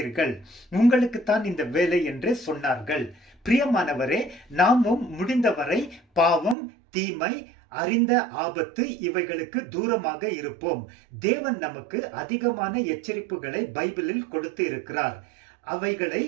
உங்களுக்கு தான் இந்த வேலை என்று சொன்னார்கள். பிரியமானவரே, நாமும் முடிந்தவரை பாவம், தீமை, அறிந்த ஆபத்து இவைகளுக்கு தூரமாக இருப்போம். தேவன் நமக்கு அதிகமான எச்சரிப்புகளை பைபிளில் கொடுத்து இருக்கிறார். அவைகளை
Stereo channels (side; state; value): left; drops out; at 6.6 s